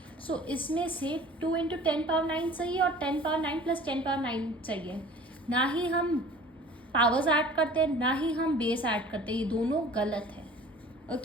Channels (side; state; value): both; normal; correlation 0.46